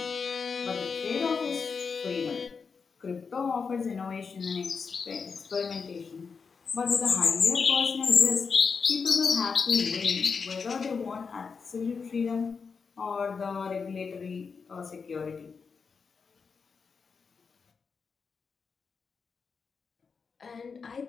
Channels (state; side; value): quieter; right; 5.4 dB